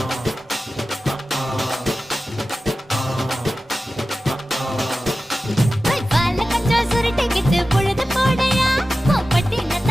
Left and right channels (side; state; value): both; normal; correlation 0.94